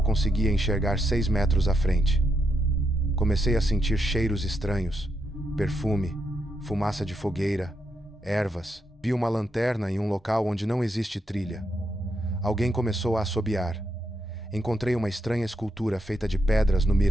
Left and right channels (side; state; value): both; normal; correlation 0.81